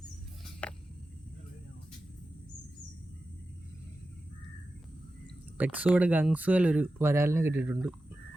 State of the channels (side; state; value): both; normal; correlation 0.93